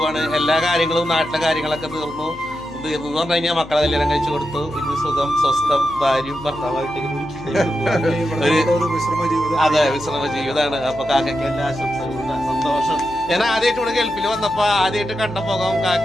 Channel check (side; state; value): left; noise; hum, 20 dB below the sound